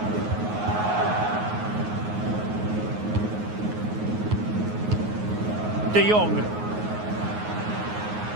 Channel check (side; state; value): left; late; 9.5 ms